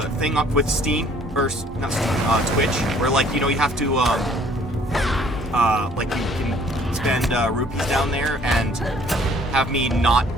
thing up with Steam or not Steam, Twitch, where like you have to like you can spend rupees down there and have me not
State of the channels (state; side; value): normal; both; correlation 0.58